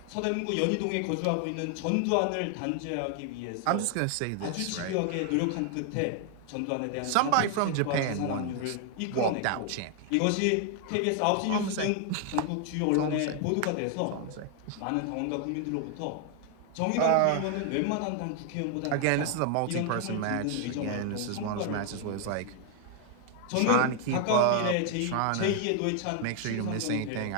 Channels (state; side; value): different; both; correlation 0.00